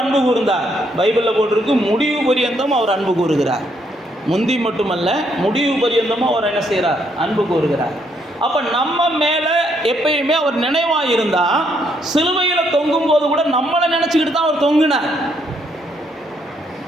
அன்பு கூர்ந்தார். பைபிளில் போட்டிருக்கு, முடிவு பரியந்தம் அவர் அன்பு கூறுகிறார். முந்தி மட்டுமல்ல, முடிவு பரியந்தமும் அவர் என்ன செய்கிறார், அன்பு கூறுகிறார். அப்போ நம்ம மேலே எப்பயுமே அவர் நினைவாக இருந்தால், சிலுவையில் தொங்கும் போது கூட நம்மளை நினச்சிக்கிட்டு தான் அவர் தொங்குனார்.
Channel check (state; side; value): normal; both; correlation 0.73